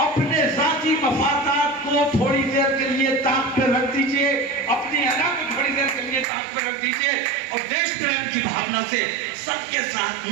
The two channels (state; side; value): drops out; left; at 6.2 s